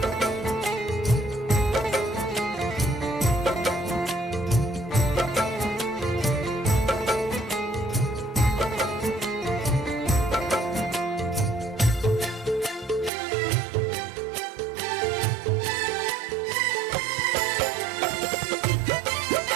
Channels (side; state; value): left; drops out; at 13.1 s